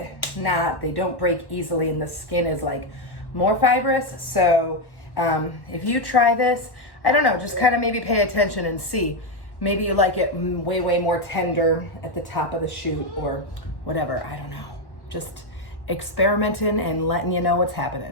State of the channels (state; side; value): late; right; 1.1 ms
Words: not, they don't break easily and the skin is like more fibrous. So if you try this, I don't know, just kind of maybe pay attention and see. Maybe you like it way, way more tender at the top of the shoot or whatever, I don't know. Just experimenting and letting you know what's